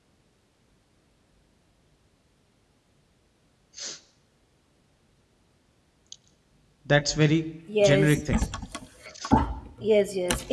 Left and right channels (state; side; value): identical; both; correlation 1.00